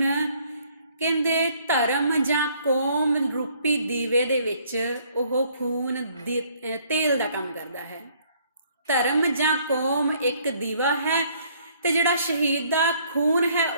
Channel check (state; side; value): inverted; both; correlation -0.63